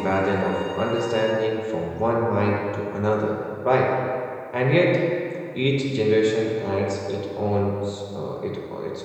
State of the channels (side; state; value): both; identical; correlation 1.00